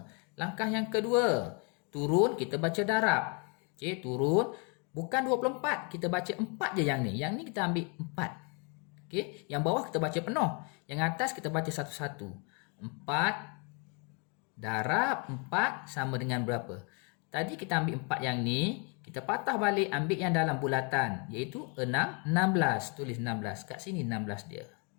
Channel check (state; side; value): quieter; right; 35.0 dB